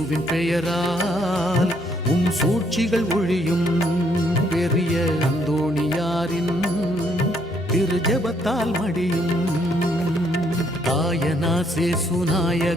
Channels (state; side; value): normal; both; correlation 0.70